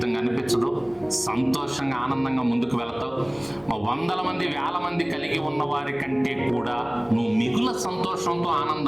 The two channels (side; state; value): right; noise; hum, 29 dB below the sound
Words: అనిపించదు. సంతోషంగా, ఆనందంగా ముందుకు వెళతావు. వందల మంది, వేల మంది కలిగి ఉన్న వారి కంటే కూడా నువ్వు మిగుల సంతోషంతో,